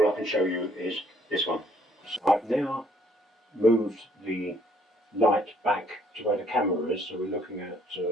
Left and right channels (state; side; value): normal; both; correlation 0.65